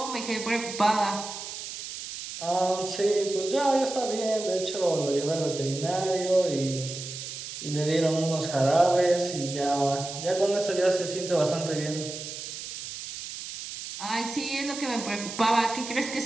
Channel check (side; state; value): right; noise; hiss, 9 dB below the sound